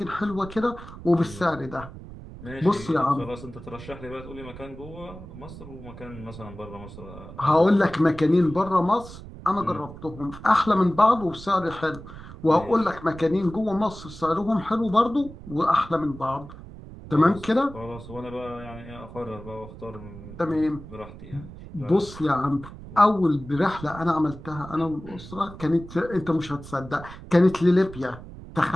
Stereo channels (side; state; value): right; noise; rumble, 15 dB below the sound